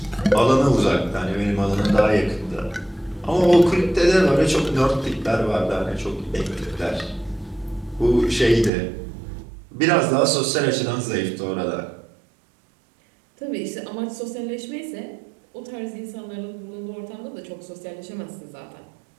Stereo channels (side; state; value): left; drops out; at 8.7 s